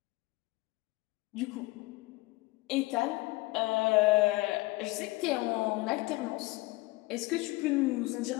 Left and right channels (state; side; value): quieter; right; 21.2 dB